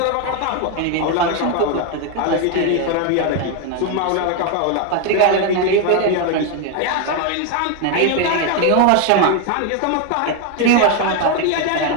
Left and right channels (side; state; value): both; different; correlation 0.01